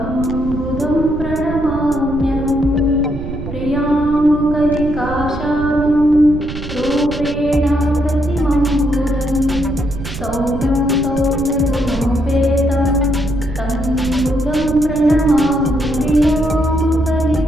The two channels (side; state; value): right; noise; rumble, 8 dB below the sound